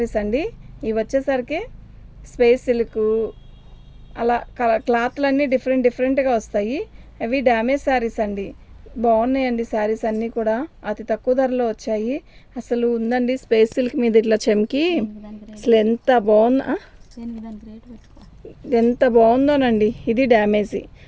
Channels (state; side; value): identical; both; correlation 1.00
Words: అండి. ఇవి వచ్చేసరికి స్పేస్ సిల్క్ అలా క్లాత్లన్నీ డిఫరెంట్గా వస్తాయి. అవి డ్యామేజ్ శారీస్ అండి. బాగున్నాయండి శారీస్ అన్నీ కూడా అతి తక్కువ ధరలో వచ్చాయి. అసలు ఉందండి స్పేస్ సిల్క్ మీద ఇట్లా చెమ్కి అసలు ఎంత బాగుందోనండి. ఇది డ్యామేజీ.